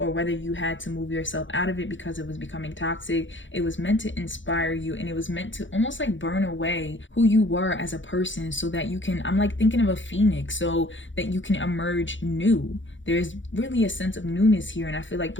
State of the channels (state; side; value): late; right; 0.55 ms